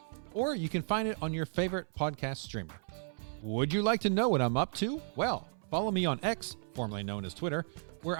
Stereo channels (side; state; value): left; silent; 55 dB below the other